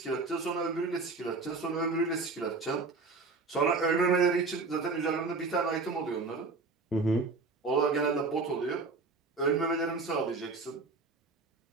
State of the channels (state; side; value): quieter; left; 3.9 dB